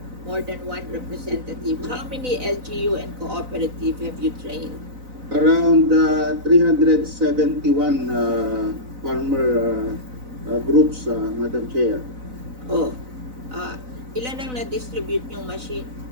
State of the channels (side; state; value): left; late; 4.0 ms